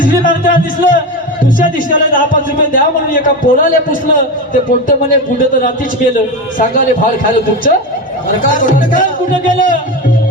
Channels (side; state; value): both; normal; correlation 0.19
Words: मागताना दिसलं दुसऱ्या दिवसाला 10-5 रुपये द्या म्हणून एका पोराला पुसलं ते पोट्ट म्हणे पुढे तर रात्रीच गेलं सांगाले भाड खायला तुमचं कुठं गेलं